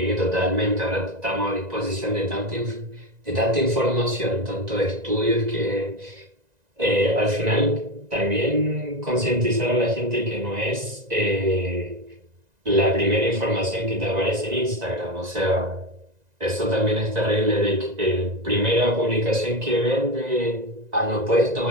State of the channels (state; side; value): late; left; 1.9 ms